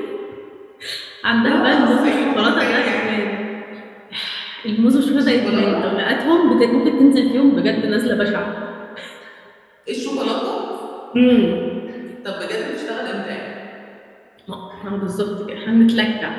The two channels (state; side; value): identical; both; correlation 1.00